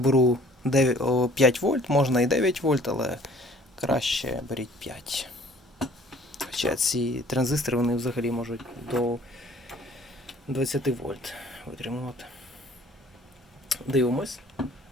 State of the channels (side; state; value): both; normal; correlation 0.54